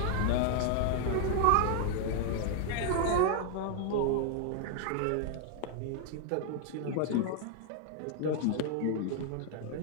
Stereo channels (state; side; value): different; both; correlation 0.00